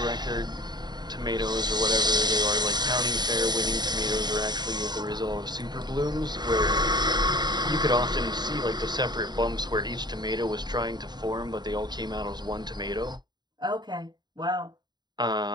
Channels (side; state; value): left; late; 0.20 ms